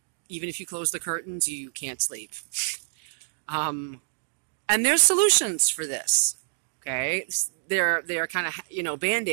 Even if you close the curtains, you can't sleep. And there's solutions for this. Okay, they're kind of, you know,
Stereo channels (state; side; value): silent; left; digital silence